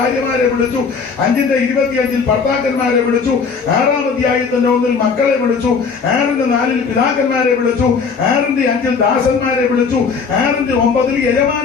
വിളിച്ചു. 5-ന്റെ 25 ഭർത്താക്കന്മാരെ വിളിച്ചു. 6-ാം അധ്യായത്തിന്റെ 1 മക്കളെ വിളിച്ചു. 6-ന്റെ 4 പിതാക്കന്മാരെ വിളിച്ചു. 6-ന്റെ 5 ദാസന്മാരെ വിളിച്ചു. 6-ന്റെ 9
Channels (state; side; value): quieter; right; 5.3 dB